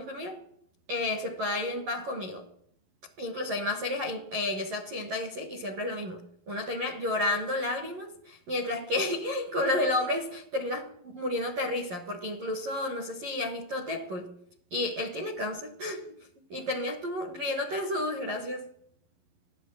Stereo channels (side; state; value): left; late; 11 ms